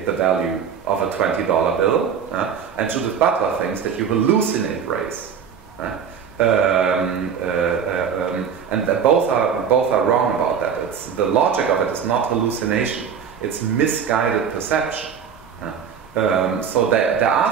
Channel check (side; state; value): left; quieter; 7.2 dB